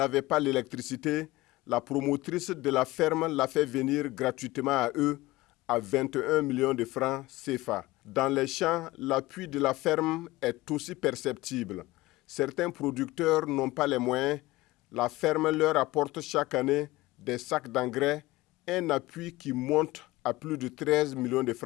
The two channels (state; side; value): quieter; right; 19.2 dB